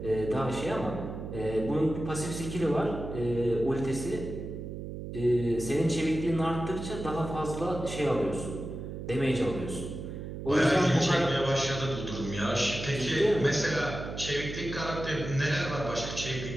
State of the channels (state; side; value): noise; right; hum, 8 dB below the sound